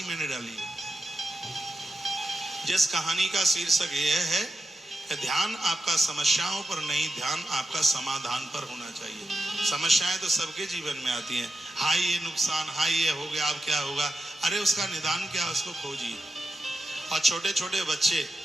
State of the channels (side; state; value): both; normal; correlation 0.88